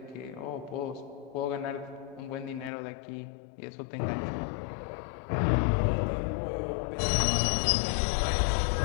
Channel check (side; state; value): right; drops out; at 2.7 s